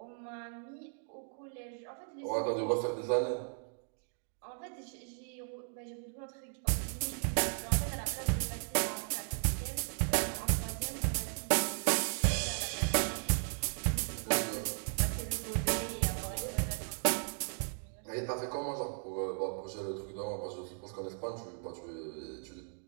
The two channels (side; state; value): left; silent; 54 dB below the other